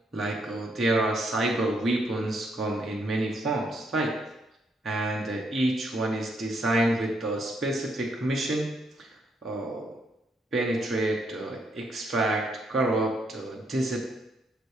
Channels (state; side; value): normal; both; correlation 0.74